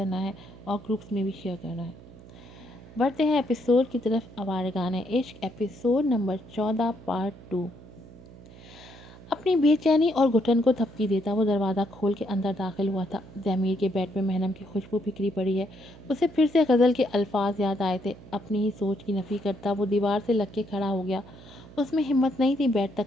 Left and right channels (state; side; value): noise; right; hum, 19 dB below the sound